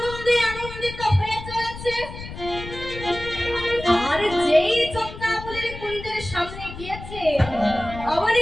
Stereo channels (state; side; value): noise; left; rumble, 12 dB below the sound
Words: আনন্দিত হয়ে চলেছে। আর যেই চন্দ্রাবলীর কুঞ্জের সামনে গিয়েছে অমনি